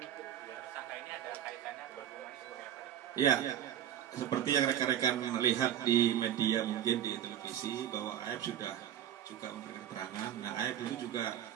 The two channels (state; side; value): quieter; left; 10.5 dB